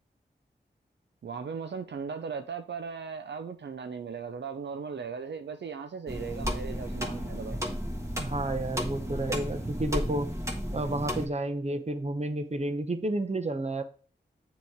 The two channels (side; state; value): both; normal; correlation 0.62